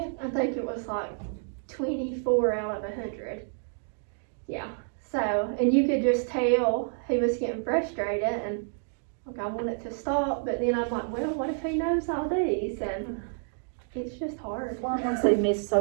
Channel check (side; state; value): left; silent; 59 dB below the other